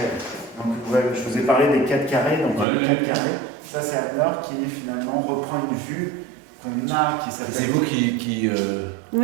Donc, ouais, je vous ai parlé des 4 carrés. Donc, les 4 carrés, ça, c'est Anne-Laure qui finalement reprend une vue qu'on a, qui s'appelle. C'est vous qui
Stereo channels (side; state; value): left; drops out; at 2.7 s